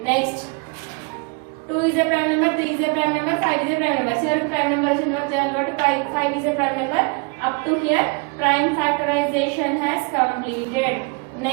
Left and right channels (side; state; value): left; quieter; 32.0 dB